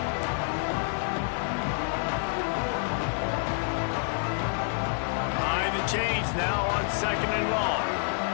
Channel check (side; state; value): right; silent; digital silence